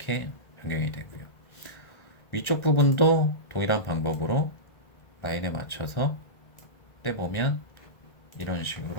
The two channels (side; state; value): right; late; 1.4 ms